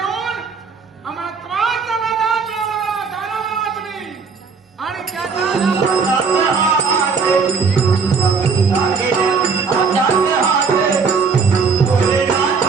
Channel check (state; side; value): quieter; left; 5.2 dB